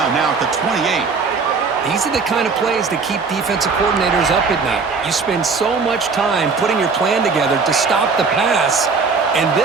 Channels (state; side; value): quieter; left; 4.8 dB